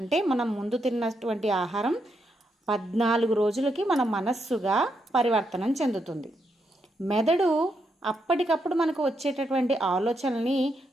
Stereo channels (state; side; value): normal; both; correlation 0.80